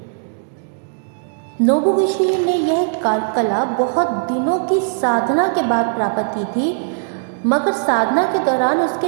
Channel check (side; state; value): left; silent; 67 dB below the other